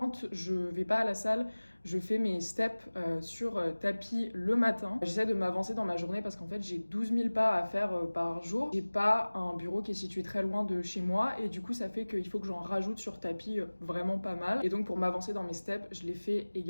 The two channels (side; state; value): both; inverted; correlation -1.00